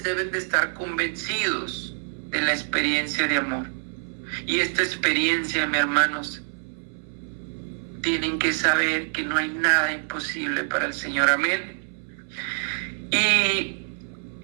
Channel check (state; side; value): silent; left; 59 dB below the other